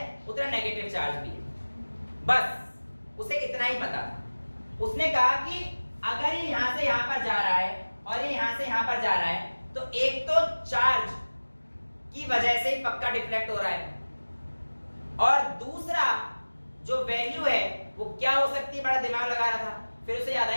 उतना नेगेटिव चार्ज भी है। बस उसे इतना ही पता था। उसने कहा कि अगर ये यहां से यहां पर जा रहा है और ये यहां से यहां पर जा रहा है, तो एक तो चार्ज की वजह से ही पक्का डिफ्लेक्ट हो रहा है, और दूसरा जो वैल्यू है वो क्या हो सकती है, बड़ा दिमाग लगा रहा था। फिर उसे याद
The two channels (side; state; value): both; inverted; correlation -1.00